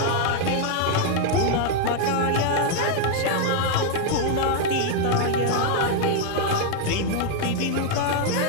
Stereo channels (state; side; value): different; both; correlation 0.00